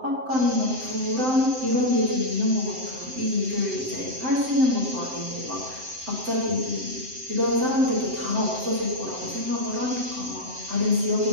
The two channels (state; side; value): late; left; 7.7 ms